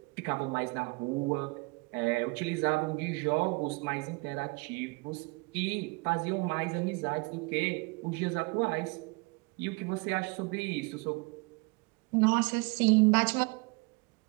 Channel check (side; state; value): left; quieter; 28.1 dB